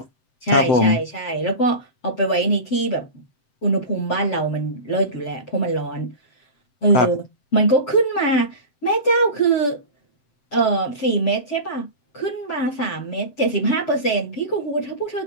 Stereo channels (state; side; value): late; right; 7.7 ms